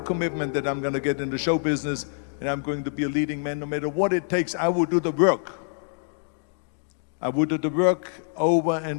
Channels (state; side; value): silent; right; digital silence